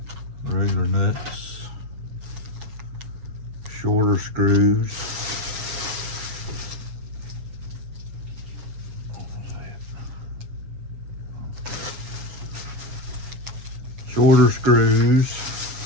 regular nuts, shorter screws. Shorter screws,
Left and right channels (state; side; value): late; left; 7.2 ms